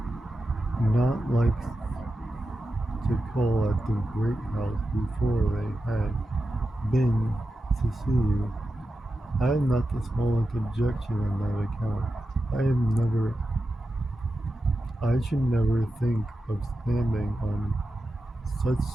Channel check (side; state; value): both; normal; correlation 0.91